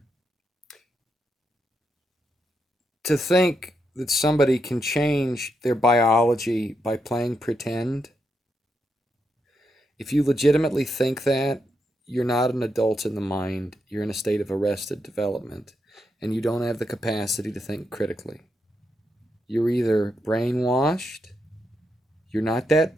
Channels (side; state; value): both; normal; correlation 0.82